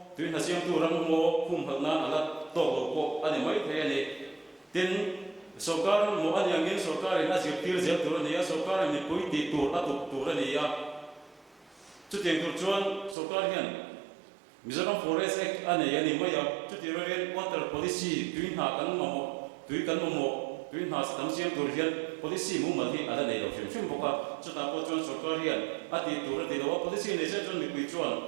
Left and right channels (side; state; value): left; drops out; at 13.2 s